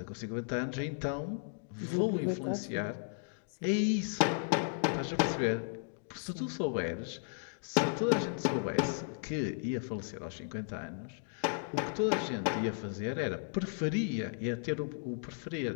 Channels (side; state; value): right; silent; digital silence